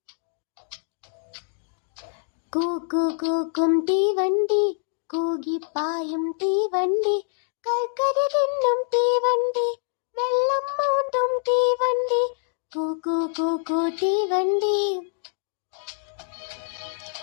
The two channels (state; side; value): silent; right; digital silence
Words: കൂക്കും തീവണ്ടി, കൂകിപ്പായും തീവണ്ടി, കൽക്കരി തിന്നും തീവണ്ടി, വെള്ളം മൂന്നും തീവണ്ടി, കൂക്കു തീവണ്ടി.